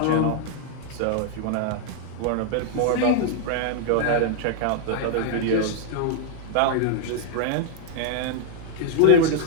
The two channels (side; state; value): both; different; correlation -0.01